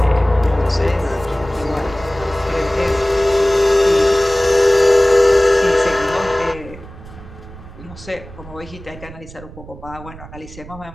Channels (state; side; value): noise; right; rumble, 17 dB below the sound